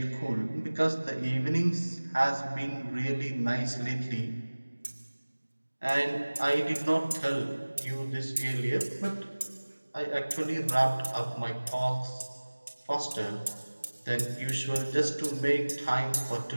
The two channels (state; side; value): inverted; both; correlation -1.00